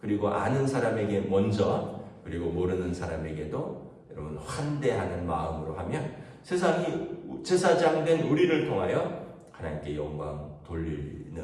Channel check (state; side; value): identical; both; correlation 1.00